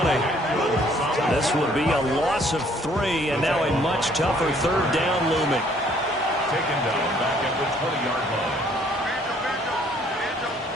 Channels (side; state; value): both; normal; correlation 0.62